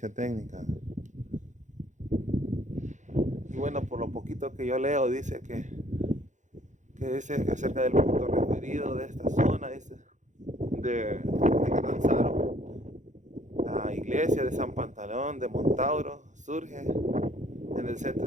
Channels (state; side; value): late; left; 0.35 ms